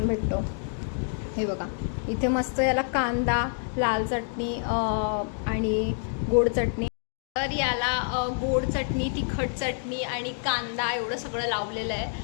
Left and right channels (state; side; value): silent; right; 60 dB below the other